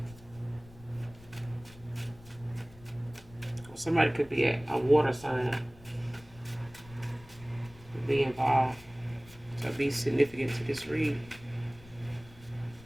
Somebody could be a water sign. Could be involved. So be significant to this read.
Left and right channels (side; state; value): left; noise; rumble, 21 dB below the sound